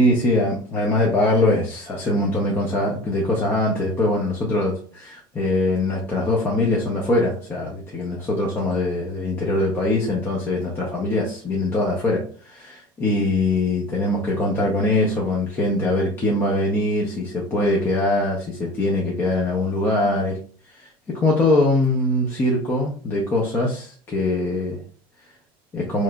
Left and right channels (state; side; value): normal; both; correlation 0.40